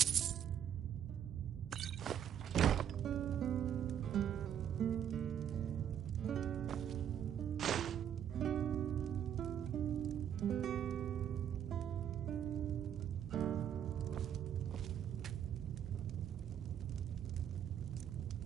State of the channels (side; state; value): left; quieter; 9.5 dB